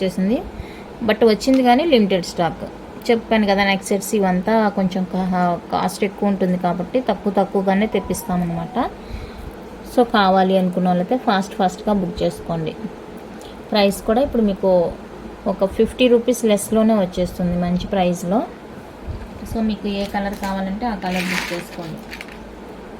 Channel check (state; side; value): identical; both; correlation 1.00